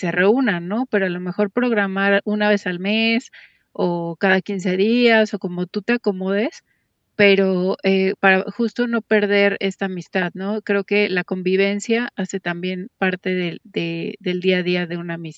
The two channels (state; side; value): identical; both; correlation 1.00